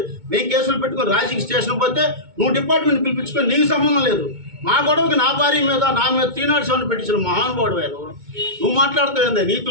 మేము కేసులు పెట్టుకొని రాజకీయ స్టేషన్ పోతే నువ్వు డిపార్ట్మెంట్ పిలిపించుకొని నీకు సంబంధం లేదు. మా గొడవకి నా భార్య మీద, నా మీద 307 పెట్టించిన మహానుభావుడు నువ్వు మాట్లాడుతావు ఏందా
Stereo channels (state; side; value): late; left; 2.2 ms